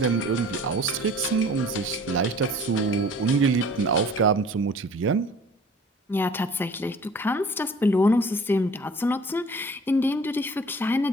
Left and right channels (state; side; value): normal; both; correlation 0.48